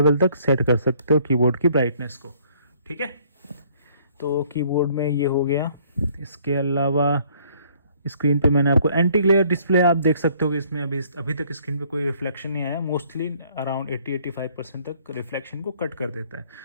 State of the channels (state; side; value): inverted; both; correlation -0.62